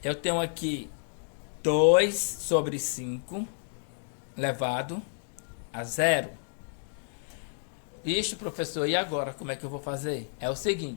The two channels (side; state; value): right; silent; 58 dB below the other